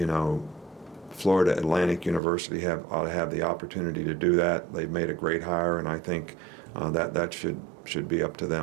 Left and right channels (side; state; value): left; drops out; at 2.2 s